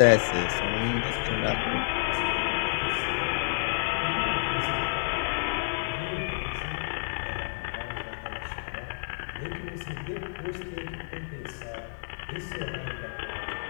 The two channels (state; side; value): silent; right; digital silence